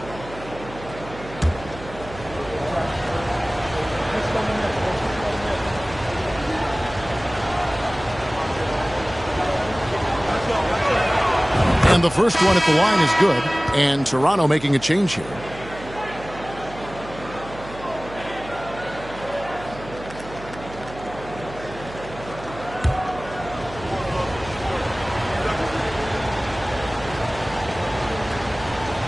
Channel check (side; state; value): right; noise; hum, 15 dB below the sound